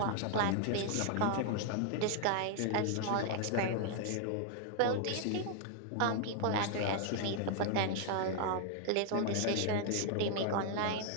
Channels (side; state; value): both; different; correlation 0.00